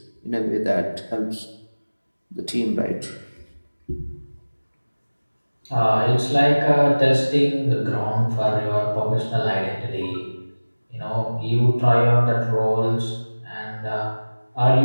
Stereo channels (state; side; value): inverted; both; correlation -1.00